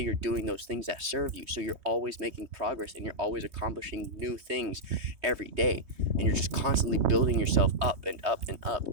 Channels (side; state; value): left; late; 3.2 ms